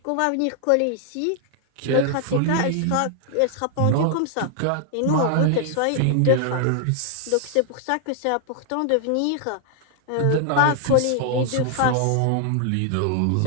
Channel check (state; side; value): different; both; correlation 0.00